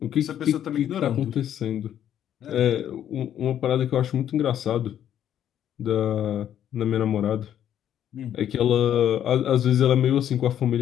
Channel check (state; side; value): quieter; right; 10.3 dB